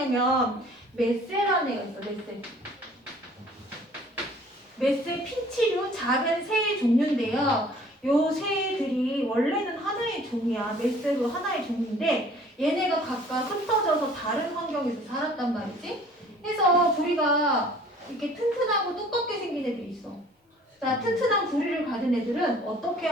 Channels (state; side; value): normal; both; correlation 0.52